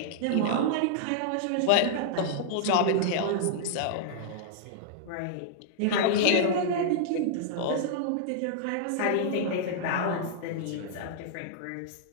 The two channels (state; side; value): different; both; correlation -0.01